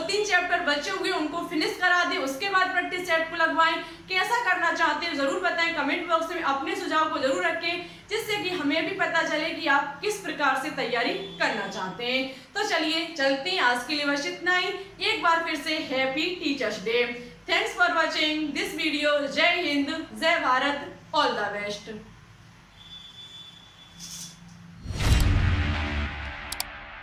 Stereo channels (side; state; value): both; identical; correlation 1.00